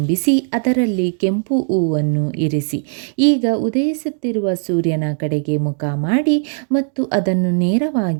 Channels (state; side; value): silent; left; 57 dB below the other